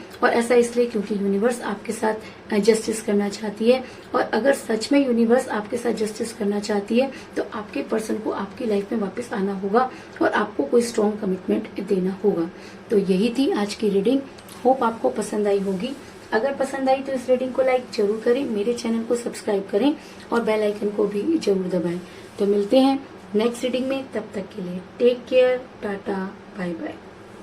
और ऐसा इसलिए क्योंकि यूनिवर्स आपके साथ जस्टिस करना चाहती है। और अगर सच में यूनिवर्स आपके साथ जस्टिस करना चाहती है तो आपके पर्सन को आपकी लाइफ में वापस आना होगा और आपको कोई स्ट्रॉन्ग कमिटमेंट देना होगा। तो यही थी आज की रीडिंग। होप आपको पसंद आई होगी। अगर पसंद आई तो इस रीडिंग को लाइक जरूर करें, मेरे चैनल को सब्सक्राइब करें और बेल आइकन को भी जरूर दबाएं। तो मिलते हैं नेक्स्ट रीडिंग में, तब तक के लिए take care, tata, bye bye.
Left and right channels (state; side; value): identical; both; correlation 1.00